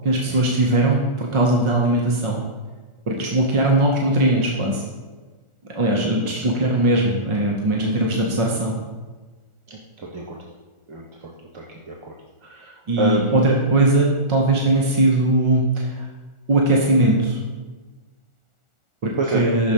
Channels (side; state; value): left; late; 1.4 ms